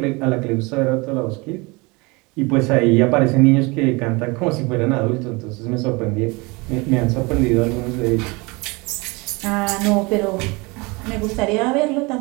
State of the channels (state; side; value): quieter; left; 26.3 dB